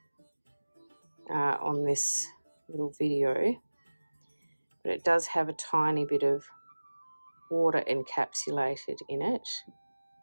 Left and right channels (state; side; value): inverted; both; correlation -1.00